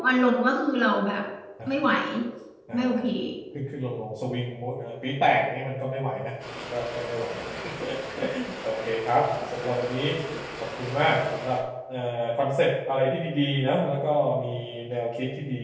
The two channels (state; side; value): identical; both; correlation 1.00